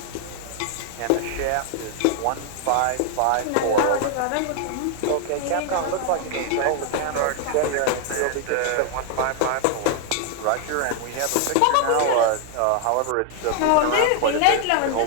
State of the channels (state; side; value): different; both; correlation 0.00